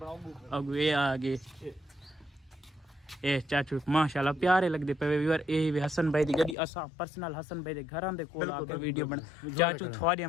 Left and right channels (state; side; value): drops out; right; at 6.6 s